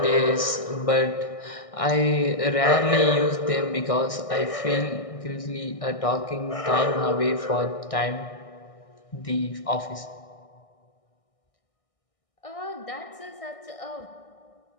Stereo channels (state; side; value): late; right; 1.6 ms